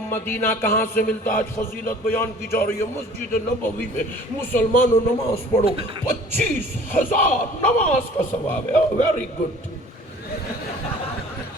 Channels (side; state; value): both; normal; correlation 0.49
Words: مدینہ کہاں سے ملتا؟ آج فضیلت بیان کی جا رہی ہے، مسجد نبوی میں مسلمانوں نماز پڑھو، 25,000 نماز کا ثواب ہے۔ ویری گڈ